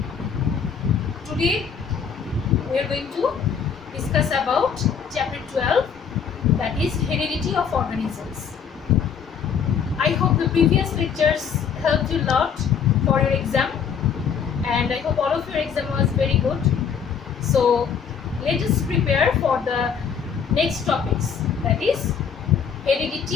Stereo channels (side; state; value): right; quieter; 7.0 dB